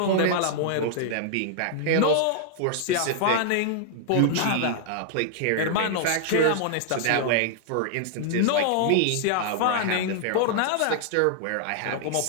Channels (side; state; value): both; different; correlation 0.00